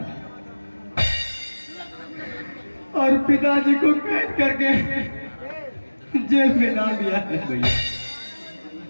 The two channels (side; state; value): both; inverted; correlation -1.00